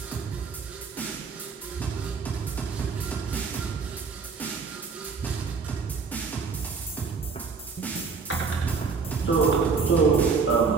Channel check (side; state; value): left; quieter; 5.2 dB